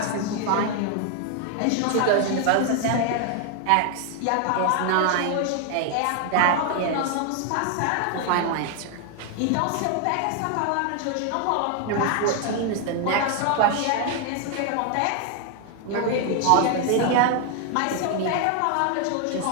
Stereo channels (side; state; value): both; different; correlation 0.00